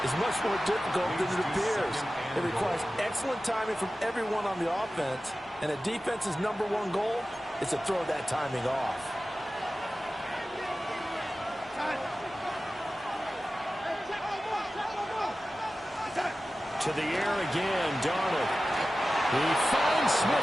is much more difficult than it appears. It requires excellent timing from everyone on the offense, and a defense's #1 goal is to throw that timing off. To the air again, Darnold. He finds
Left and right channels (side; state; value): both; normal; correlation 0.95